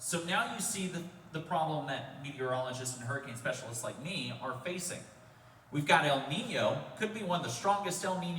now you see the problem that meteorologists and hurricane specialists like me are facing. We've got El Nino, could be one of the strongest El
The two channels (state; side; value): identical; both; correlation 1.00